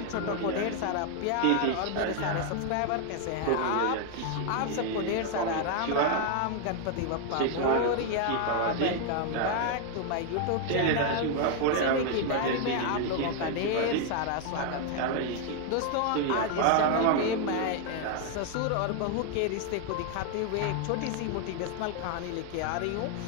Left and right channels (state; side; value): different; both; correlation 0.00